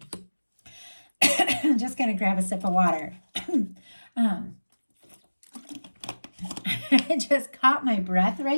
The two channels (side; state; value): both; inverted; correlation -1.00